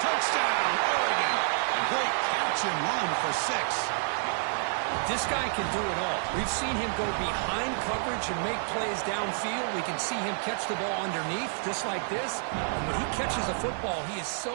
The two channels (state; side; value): silent; left; 59 dB below the other